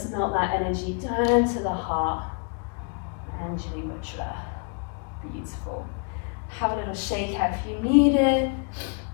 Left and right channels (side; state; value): right; quieter; 39.1 dB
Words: melt that energy down to the heart. Anjali Mudra. Beautiful. Have a little shake out if you need it.